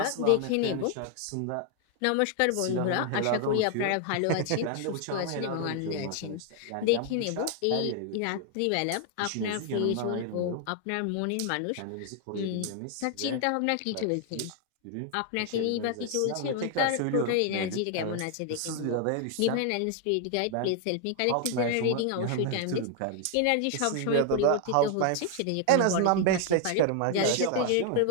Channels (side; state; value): both; different; correlation 0.00